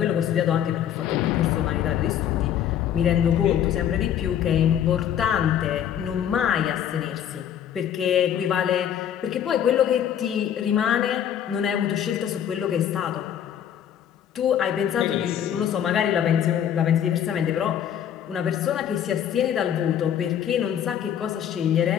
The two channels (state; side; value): quieter; right; 9.7 dB